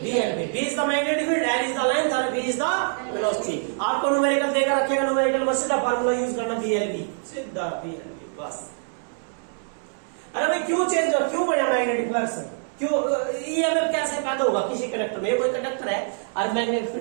B is the magnetic field, L is the length और बी इज द वेलोसिटी। आपको न्यूमेरिकल देकर रखेगा, न्यूमेरिकल में सीधा फार्मूला यूज करना, बीएलवी, सीधा बीएलवी बस। अरे भाई क्यों चेंज हो, क्यों बढ़ा मैग्नेटिक फ्लक्स, क्यों ईएमएफ कैसे पैदा होगा किसी कंडक्टर में? ये कोई कंडक्टर है और मैग्नेटिक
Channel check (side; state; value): left; silent; 62 dB below the other